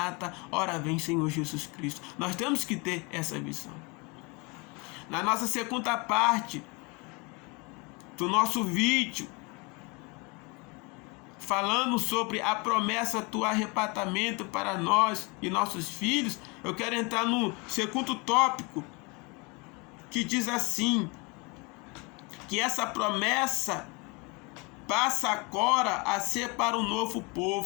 ora vem Senhor Jesus Cristo. Nós temos que ter essa visão. Na nossa segunda parte do nosso vídeo, falando sobre a promessa do arrebatamento para nós e nossos filhos, eu quero entrar no segundo tópico, que diz assim, que essa promessa passa agora a ser para o novo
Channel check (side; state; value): right; quieter; 28.9 dB